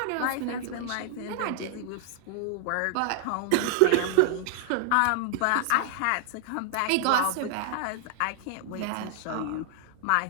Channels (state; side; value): different; both; correlation 0.00